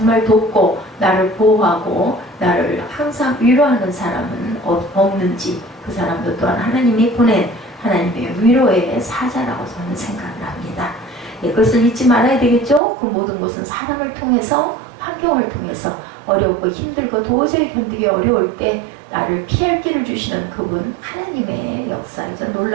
돕고 나를 보호하고 나를 항상 위로하는 사람은 없는지 그 사람도 또한 하나님이 보낸 하나님의 위로의 사자라고 저는 생각을 합니다. 그것을 잊지 말아야 되겠죠. 그 모든 것은 사람을 통해서 환경을 통해서 어렵고 힘들고 도저히 견디기 어려울 때 나를 피할 길을 주시는 그분 하나님의 역사이자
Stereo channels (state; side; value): drops out; left; at 12.8 s